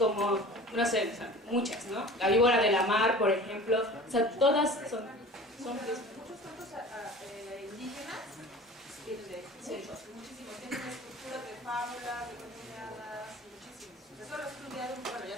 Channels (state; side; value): normal; both; correlation 0.40